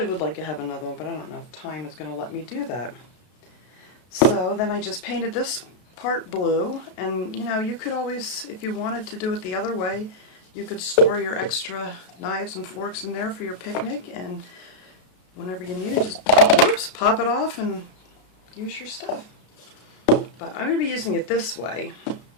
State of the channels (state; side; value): late; right; 33 ms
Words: would like to have another one, but I don't know if time is going to let me do that. So then I just painted this part blue, and you know, you could always, if you wanted to do it the other way, you could store your extra knives and forks in there for your picnic, and whenever you need it, just pop it off and use your stuff. But I'm going to be using it this way,